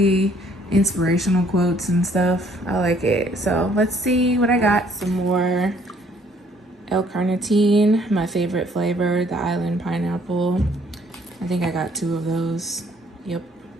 inspirational quotes and stuff. I like it. So let's see what I got. Some more L-carnitine, my favorite flavor, the island pineapple. I think I got 2 of those. Yep.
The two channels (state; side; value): normal; both; correlation 0.62